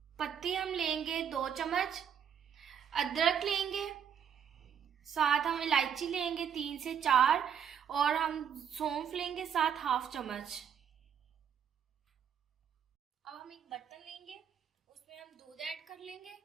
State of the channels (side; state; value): left; quieter; 8.2 dB